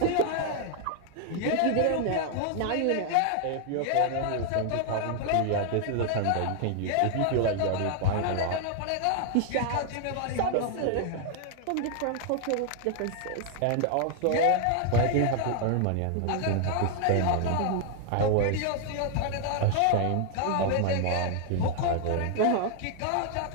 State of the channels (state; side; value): different; both; correlation 0.00